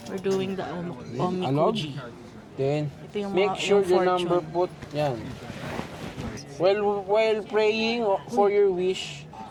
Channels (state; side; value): identical; both; correlation 1.00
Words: We're doing the Anog. omikuji. Then, Ito yung make mga- sure yung the fortune. number put, yan. While praying for your wish,